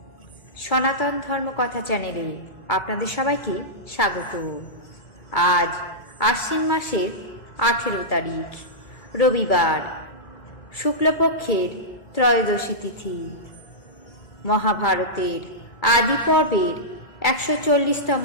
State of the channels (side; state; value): right; late; 2.0 ms